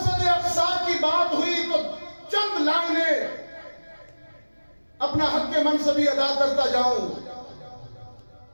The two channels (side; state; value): both; inverted; correlation -1.00